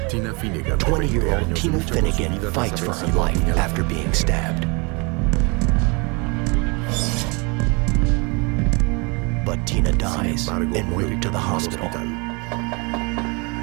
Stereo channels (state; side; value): quieter; left; 30.0 dB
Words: 20-year-old Tina Finnegan fights for her life after being stabbed. But Tina dies en route to the hospital.